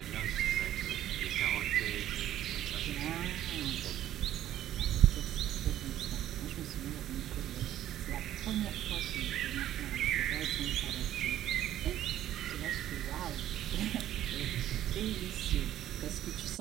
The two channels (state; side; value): quieter; left; 12.3 dB